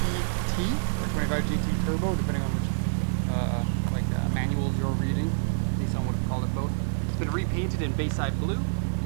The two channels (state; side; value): silent; left; 60 dB below the other